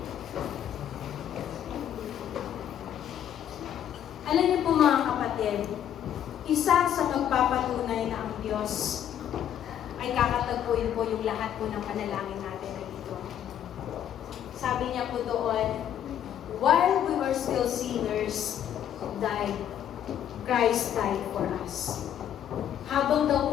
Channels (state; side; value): quieter; right; 10.2 dB